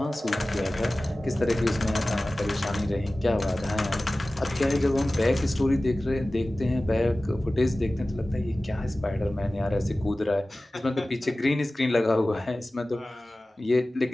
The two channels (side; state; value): both; normal; correlation 0.97